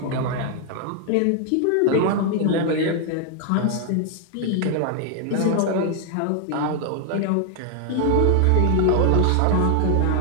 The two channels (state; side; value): different; both; correlation 0.00